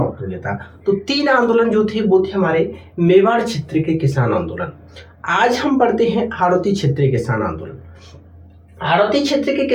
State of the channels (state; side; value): identical; both; correlation 1.00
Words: हो गया था। तो तीन आंदोलन जो थे वो थे हमारे मेवाड़ क्षेत्र के किसान आंदोलन। आज हम पढ़ते हैं हाड़ौती क्षेत्र के किसान आंदोलन। हाड़ौती क्षेत्र के